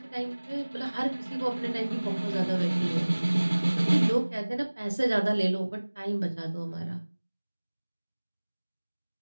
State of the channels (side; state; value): both; inverted; correlation -1.00